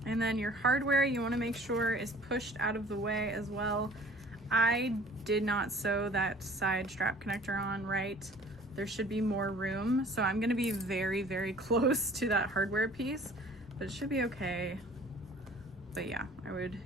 And then your hardware, you wanna make sure is pushed out of the way as well. I did not sew that side strap connector on right. There should be more room. So I'm gonna be very close to that hardware piece, but it should be okay. But yeah, I would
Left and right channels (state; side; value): normal; both; correlation 0.50